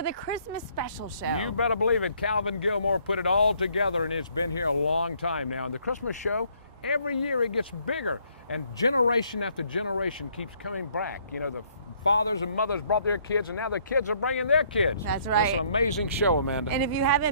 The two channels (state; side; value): inverted; both; correlation -0.66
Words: the Christmas special show. You better believe it. Calvin Gilmore put it all together, and it's been here a long time now. And the Christmas show, every year it gets bigger, and generation after generation keeps coming back. You know, the fathers and mothers brought their kids, and now the kids are bringing their kids. That's right. That's an amazing show, Amanda. And if you